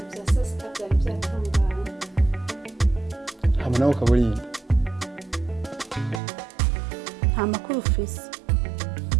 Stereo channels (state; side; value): drops out; left; at 6.2 s